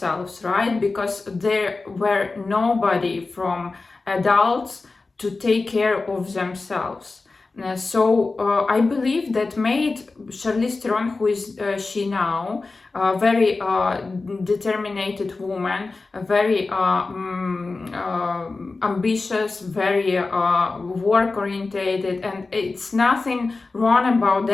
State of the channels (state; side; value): quieter; right; 3.7 dB